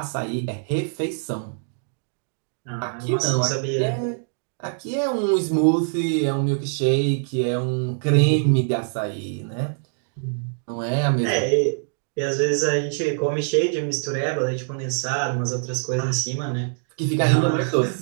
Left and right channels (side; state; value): left; silent; digital silence